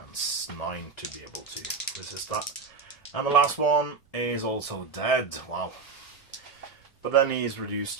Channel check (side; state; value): left; quieter; 4.7 dB